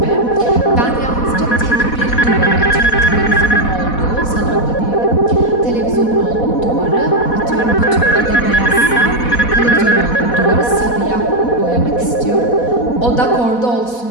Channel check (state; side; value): late; right; 4.1 ms